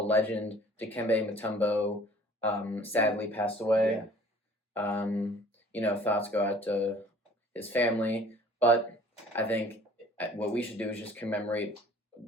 legend Dikembe Mutombo sadly passed away. Thoughts go out to his family, but I think what we should do is just commemorate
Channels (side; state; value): both; normal; correlation 0.51